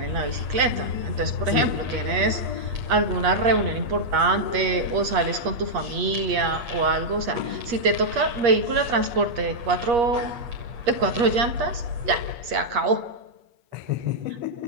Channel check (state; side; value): late; left; 8.4 ms